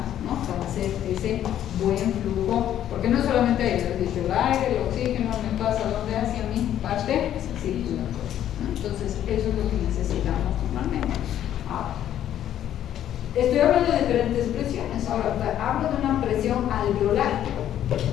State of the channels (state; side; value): quieter; right; 11.1 dB